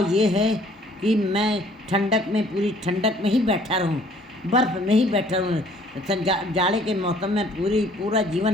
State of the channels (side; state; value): both; normal; correlation 0.58